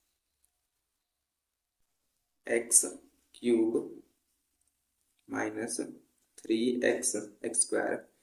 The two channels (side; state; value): both; identical; correlation 1.00